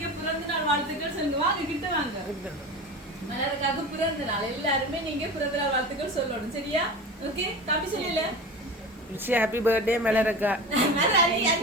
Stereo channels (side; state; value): both; normal; correlation 0.31